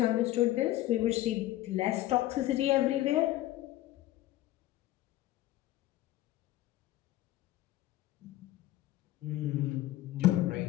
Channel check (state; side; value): quieter; right; 15.5 dB